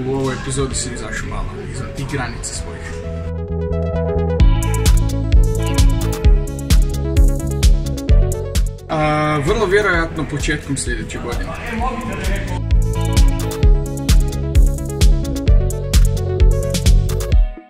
u ovoj epizodi sam izašao malo izvan tih granica svojih. Vrlo vjerojatno početkom sljedeće godine.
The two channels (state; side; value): identical; both; correlation 1.00